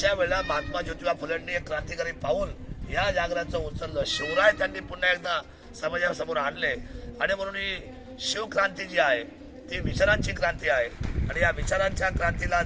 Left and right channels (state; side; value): identical; both; correlation 1.00